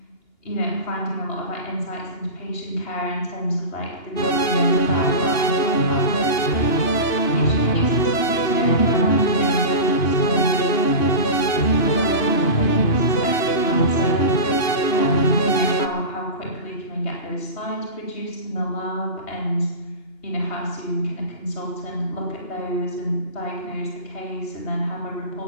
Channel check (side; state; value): right; late; 2.8 ms